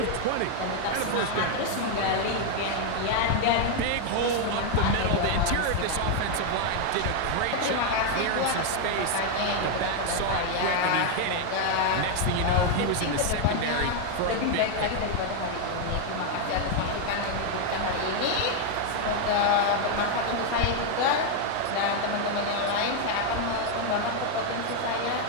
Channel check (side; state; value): both; different; correlation 0.01